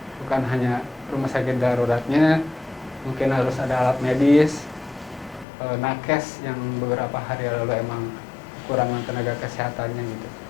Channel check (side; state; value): right; drops out; at 5.5 s